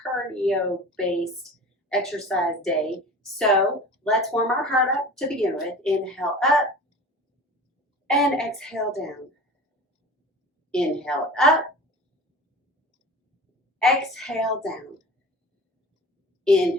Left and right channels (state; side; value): normal; both; correlation 0.38